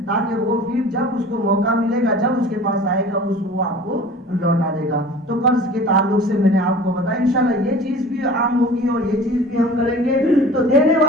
تاکہ وہ پھر جب اس کو موقع ملے گا، جب اس کے پاس آئے گا، وہ آپ کو لوٹا دے گا۔ تو قرض کے تعلق سے میں نے آپ کو بتایا، انشاءاللہ یہ چیز بھی عام ہوگی اور یہ چیز بھی ہم کریں گے، تو دینے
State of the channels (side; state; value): both; normal; correlation 0.42